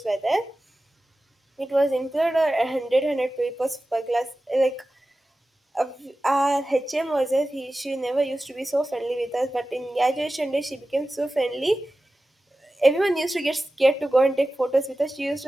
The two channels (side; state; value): both; normal; correlation 0.95